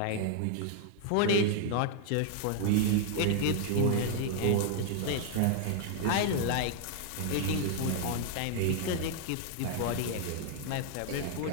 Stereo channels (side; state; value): both; different; correlation 0.00